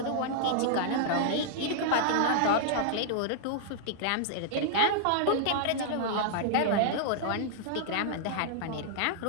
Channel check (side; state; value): both; different; correlation -0.01